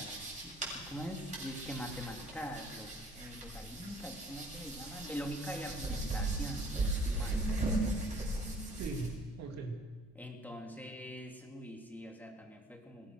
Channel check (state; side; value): normal; both; correlation 0.56